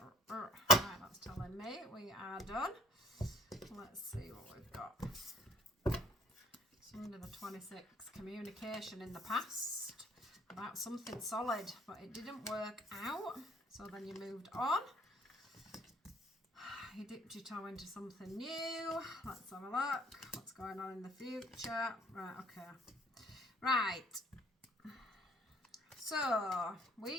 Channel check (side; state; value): both; normal; correlation 0.57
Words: Right, that's telling me we are done. Let's see what we've got. Sunday the 26th, communication in the past about something solid, but it didn't work out. So then you moved on. You dipped your toe into something new. Let's have a look. What's going on in the future? Right, okay. Right. So